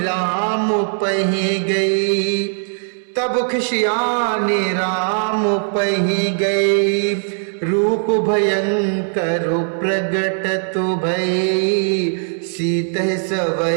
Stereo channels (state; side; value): silent; left; 65 dB below the other